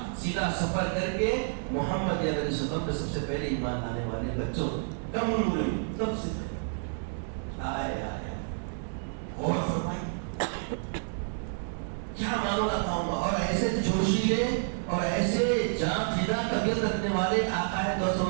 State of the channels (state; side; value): silent; left; digital silence